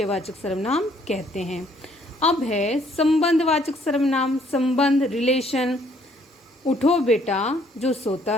सर्वनाम कहते हैं। अब है संबंधवाचक सर्वनाम। संबंध, रिलेशन। उठो बेटा, जो सोता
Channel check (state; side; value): normal; both; correlation 0.64